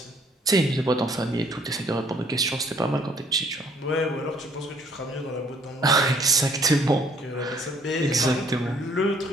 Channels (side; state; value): both; normal; correlation 0.62